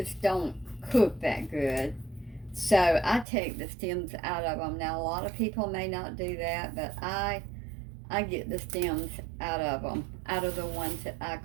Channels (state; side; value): drops out; left; at 3.2 s